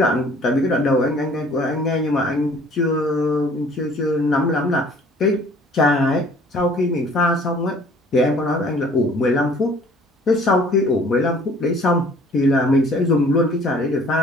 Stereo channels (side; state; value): both; normal; correlation 0.53